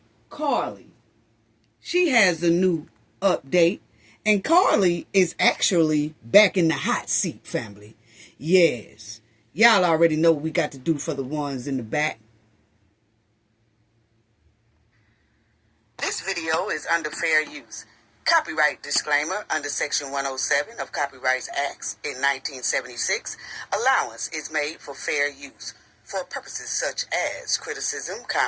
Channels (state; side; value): identical; both; correlation 1.00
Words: Carlee. She has a new update, and Carlee is actually back in the hot seat, family. Yes, y'all already know what we got to do for the ones in the back. This video is under fair use. Copyright disclaimer under Section 107 of Copyright Acts in 1976. Allowance is made for fair use for purposes such as criticism,